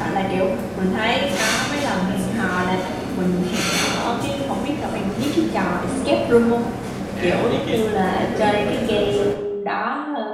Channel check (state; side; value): identical; both; correlation 1.00